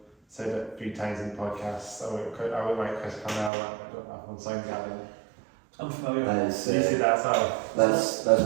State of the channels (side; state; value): left; drops out; at 3.5 s